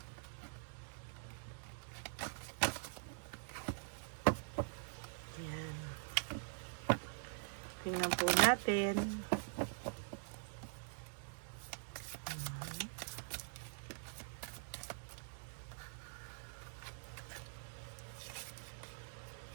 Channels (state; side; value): silent; left; digital silence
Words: Yan. Tingnan po natin.